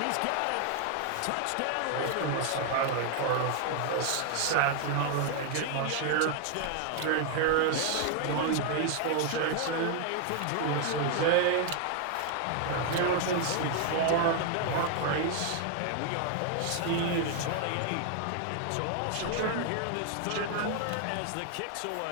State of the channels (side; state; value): both; different; correlation 0.00